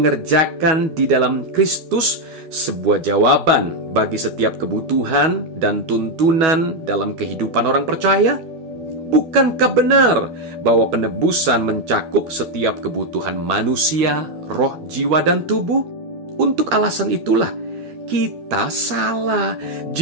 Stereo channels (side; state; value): left; late; 12 ms